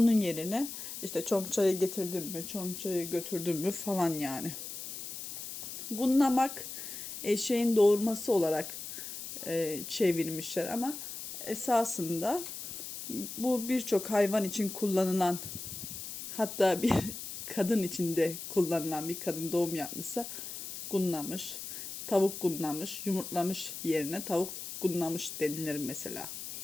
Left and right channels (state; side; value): noise; left; hiss, 8 dB below the sound